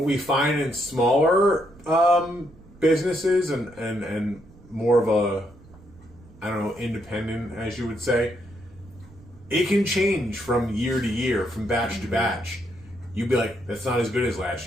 we find in smaller businesses and more of a, independent, as you would say, it can change from year to year, from batch to batch. You'd be like, that's not as good as last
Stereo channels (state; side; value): noise; right; rumble, 23 dB below the sound